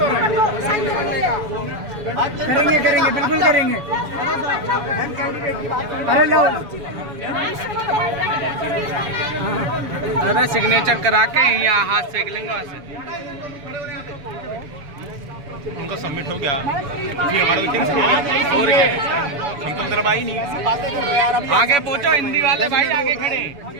करेंगे बिल्कुल करेंगे। अरे लो अरे सिग्नेचर करा के यहाँ हाथ सेक लेंगे वहाँ से। उनका सबमिट हो गया, हमारा मीटिंग से और क्या, हम तो तरफ आई नहीं। आगे पहुँचो हिंदी वाले भाई, आगे खड़े।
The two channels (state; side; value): late; left; 7.1 ms